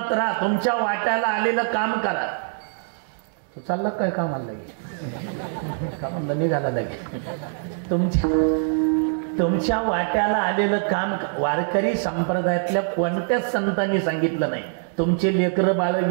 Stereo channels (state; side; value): silent; left; digital silence